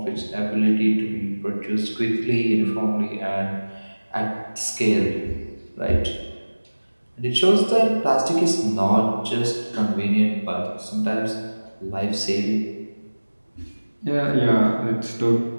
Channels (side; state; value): both; inverted; correlation -1.00